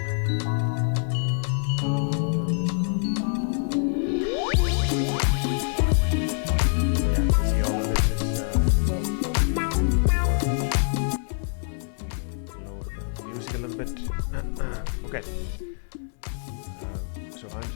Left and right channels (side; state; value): right; silent; digital silence